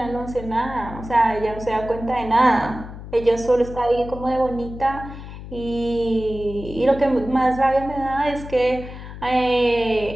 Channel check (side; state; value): left; noise; hum, 12 dB below the sound